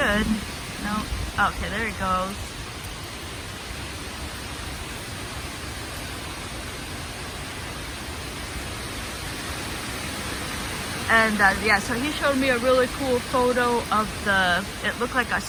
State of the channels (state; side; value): identical; both; correlation 1.00